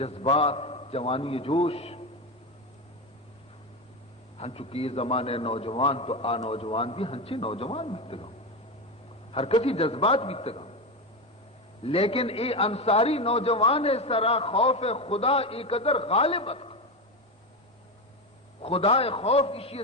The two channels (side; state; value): both; normal; correlation 0.16